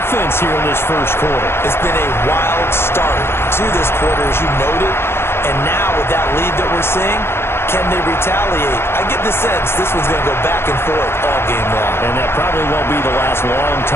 here in this first quarter. It's been a wild start to this quarter, as you noted. And now with that lead that we're seeing, can they retaliate? I get the sense this one's going to go back and forth all game long. And that probably won't be the last long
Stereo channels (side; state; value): right; late; 0.12 ms